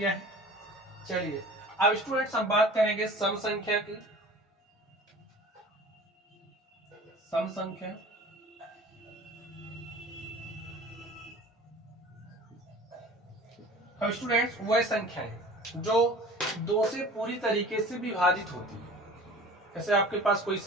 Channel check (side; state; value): both; normal; correlation 0.43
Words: है। चलिए अब स्टूडेंट्स हम बात करेंगे सम संख्या की। सम संख्या, अब स्टूडेंट्स वह संख्या है जो 2 से पूरी तरीके से विभाजित होती है। जैसे आपके पास कोई